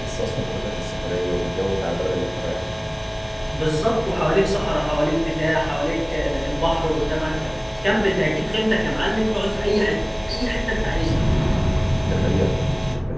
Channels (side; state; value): both; identical; correlation 1.00